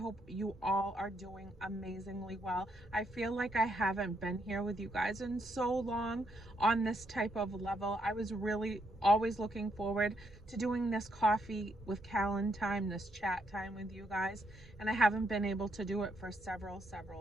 you all are doing amazingly well. I feel like I haven't been here with you guys in so long on this type of level. I was really always looking forward to doing this coffee with Kalyn time, this chat time with you guys, and I haven't been able to do it for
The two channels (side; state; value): right; noise; rumble, 24 dB below the sound